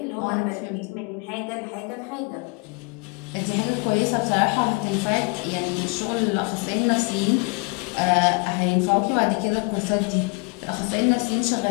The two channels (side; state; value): right; quieter; 31.5 dB